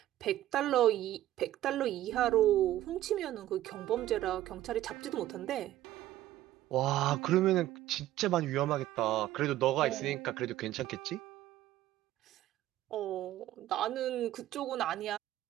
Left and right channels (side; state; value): left; quieter; 13.9 dB